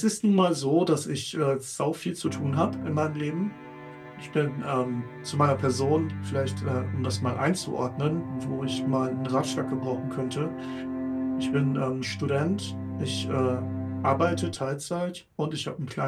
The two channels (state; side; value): identical; both; correlation 1.00